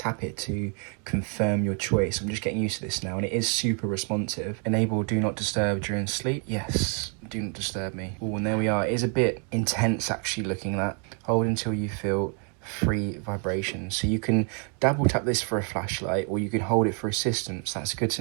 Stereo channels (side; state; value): left; quieter; 39.5 dB